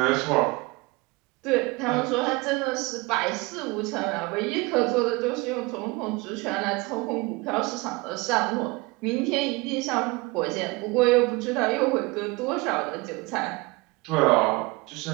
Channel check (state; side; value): quieter; left; 24.5 dB